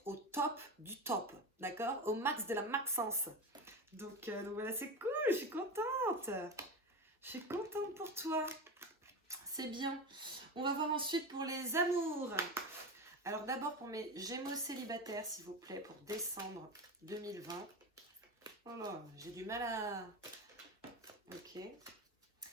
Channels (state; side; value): normal; both; correlation 0.23